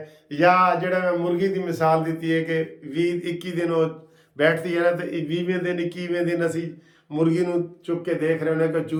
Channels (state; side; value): identical; both; correlation 1.00